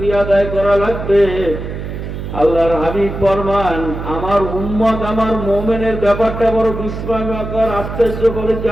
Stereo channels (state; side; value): noise; right; hum, 7 dB below the sound